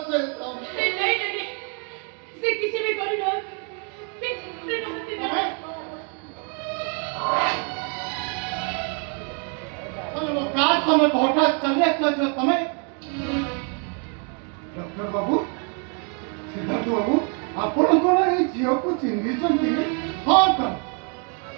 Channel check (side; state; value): left; quieter; 38.8 dB